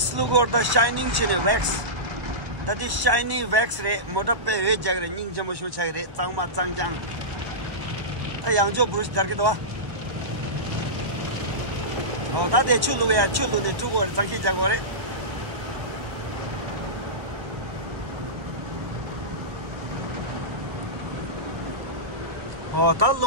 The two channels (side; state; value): left; late; 1.1 ms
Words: look or the shining chin wax. That is shiny wax ray, Motape, Jagger, Ning Jamushu Chagre, Tangma Tangjang. A young Joe Bruce Darkidwa. Oh, that is Chulu, we are Chulu, the two words, Taki Jagore. Oh, that